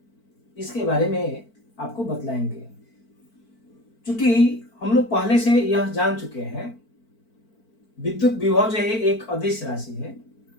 इसके बारे में आपको बतलाएंगे। चूंकि हम लोग पहले से यह जान चुके हैं, विद्युत विभव जो है एक अदिश राशि है।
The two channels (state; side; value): late; right; 4.5 ms